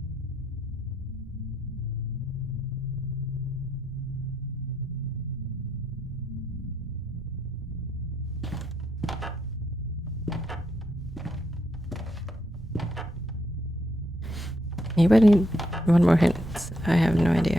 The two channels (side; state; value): both; normal; correlation 0.77